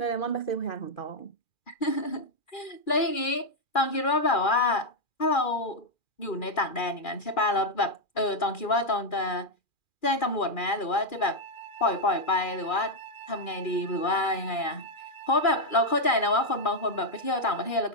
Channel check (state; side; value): late; right; 2.4 ms